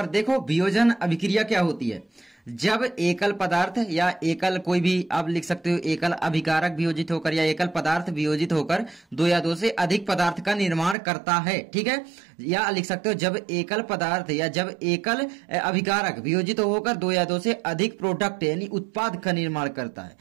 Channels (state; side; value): drops out; left; at 11.0 s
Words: देखो वियोजन अभिक्रिया क्या होती है। जब एकल पदार्थ या एकल कोई भी आप लिख सकते हो, एकल अभिकारक वियोजित होकर या एकल पदार्थ वियोजित होकर 2 या 2 से अधिक पदार्थ का निर्माण करता है, ठीक है। या लिख सकते हो जब एकल पदार्थ या जब एकल अभिकारक वियोजित होकर 2 या 2 से अधिक प्रोडक्ट यानी उत्पाद का निर्माण करता है,